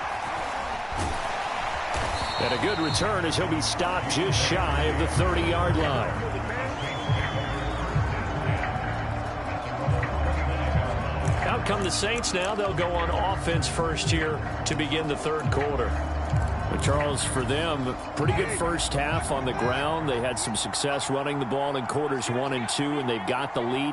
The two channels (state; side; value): identical; both; correlation 1.00